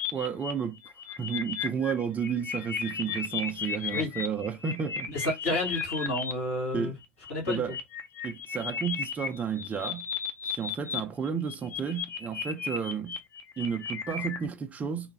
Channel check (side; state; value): both; normal; correlation 0.35